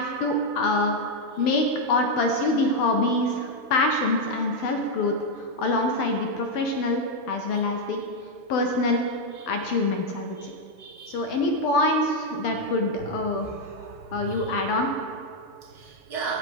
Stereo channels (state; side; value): late; right; 6.9 ms